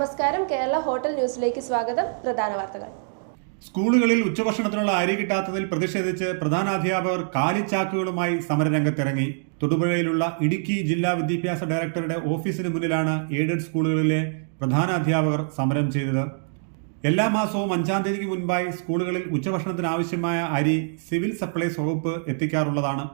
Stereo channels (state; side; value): silent; left; digital silence